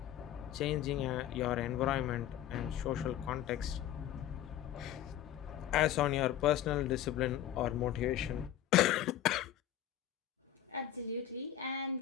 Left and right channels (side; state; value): right; quieter; 11.4 dB